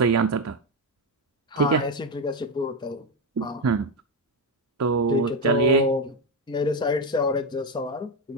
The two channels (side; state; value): both; normal; correlation 0.08